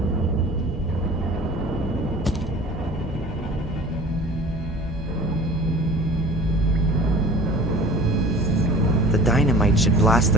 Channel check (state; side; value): normal; both; correlation 0.44